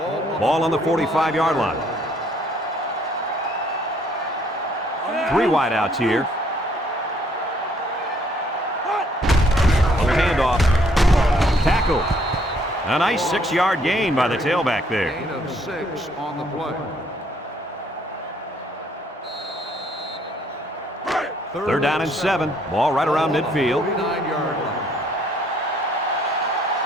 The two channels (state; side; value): normal; both; correlation 0.65